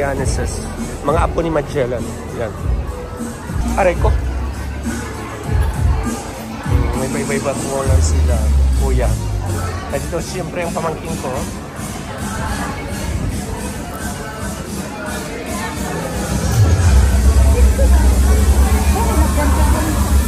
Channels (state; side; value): identical; both; correlation 1.00